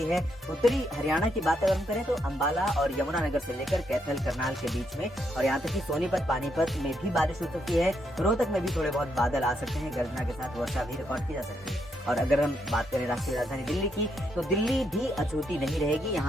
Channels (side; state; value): both; normal; correlation 0.77